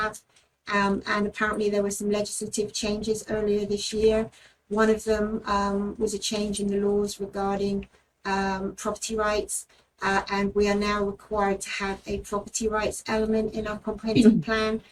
And apparently there were some legislative changes earlier this year. One of them was a change in the laws regarding property rights. And we are now required to have a property rights element in our comprehensive plan.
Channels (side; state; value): both; identical; correlation 1.00